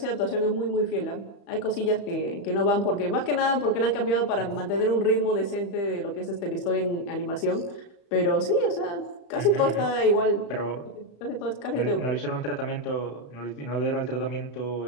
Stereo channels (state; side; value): late; right; 35 ms